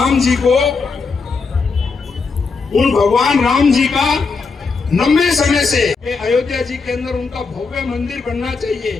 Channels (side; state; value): right; quieter; 4.6 dB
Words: जी को, उन भगवान राम जी का लंबे समय से अयोध्या जी के अंदर उनका भव्य मंदिर बनना